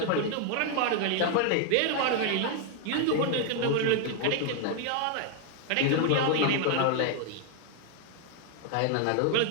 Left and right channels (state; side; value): different; both; correlation 0.00